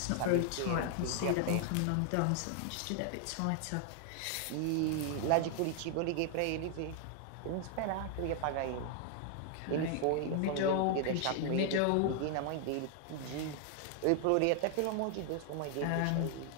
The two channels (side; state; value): both; different; correlation 0.00